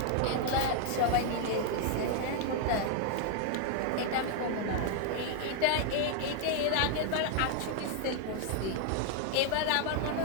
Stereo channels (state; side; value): different; both; correlation 0.00